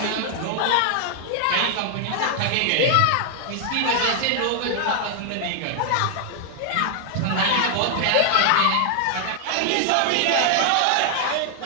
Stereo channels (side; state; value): both; different; correlation 0.00